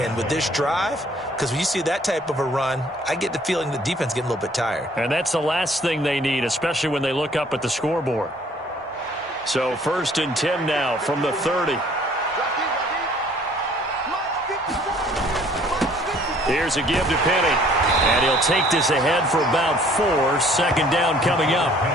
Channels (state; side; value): normal; both; correlation 0.58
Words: with this drive, because when you see that type of a run, I get the feeling the defense getting a little bit tired. And that's the last thing they need, especially when they look up at the scoreboard. So 1st and 10 now from the 30. Here's a give to Penny. And he'll take this ahead for about 4. 2nd down coming up.